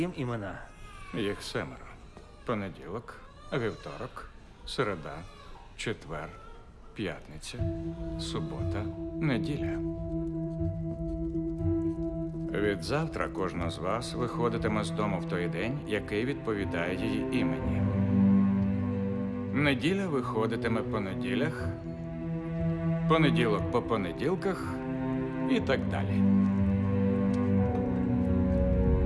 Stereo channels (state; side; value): identical; both; correlation 1.00